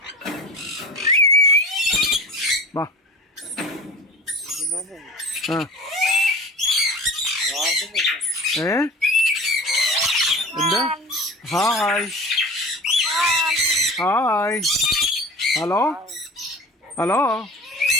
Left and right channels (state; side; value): normal; both; correlation 0.36